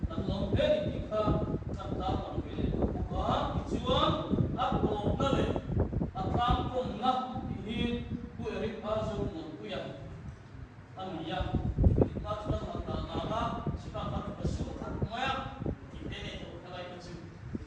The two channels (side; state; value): both; identical; correlation 1.00